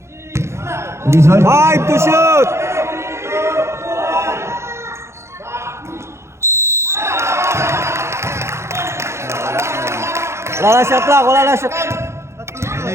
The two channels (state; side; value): late; left; 0.13 ms